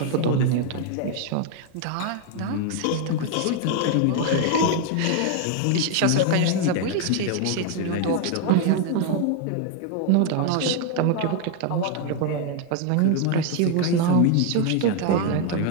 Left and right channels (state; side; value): different; both; correlation 0.01